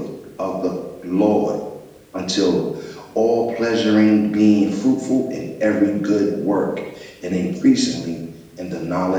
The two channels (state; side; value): identical; both; correlation 1.00